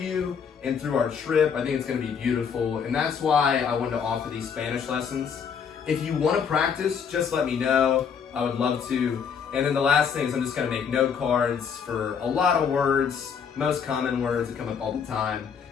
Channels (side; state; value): right; quieter; 6.9 dB